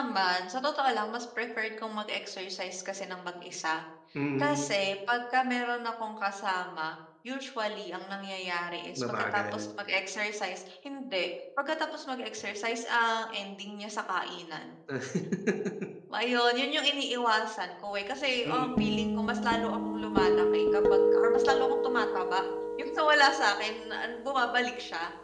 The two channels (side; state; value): both; identical; correlation 1.00